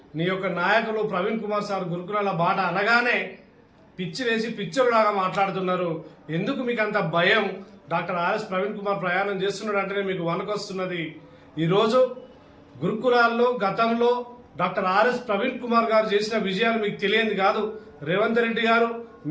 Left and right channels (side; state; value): both; identical; correlation 1.00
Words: నీ యొక్క నాయకులు ప్రవీణ్ కుమార్ సార్ గురుకులాల బాట అనగానే పిచ్చి వేసి పిచ్చోళ్ళలాగా మాట్లాడుతున్నారు. ఎందుకు మీకు అంత భయం? డాక్టర్ ఆర్ఎస్ ప్రవీణ్ కుమార్ ప్రయాణం చేస్తున్నాడు అంటేనే మీకు వణకొస్తున్నది. ఈరోజు గురుకులాల్లో గతంలో డాక్టర్ ఆర్ఎస్ ప్రవీణ్ కుమార్ గారు చేసిన విజయాలు మీకు తెలియంది కాదు. రేవంత్ రెడ్డి గారు